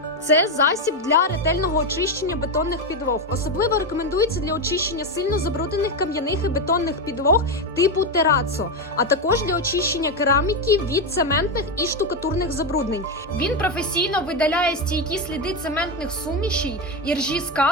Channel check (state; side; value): normal; both; correlation 0.11